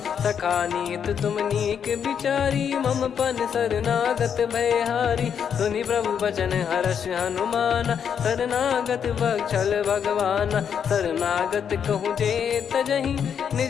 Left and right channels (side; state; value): right; quieter; 7.8 dB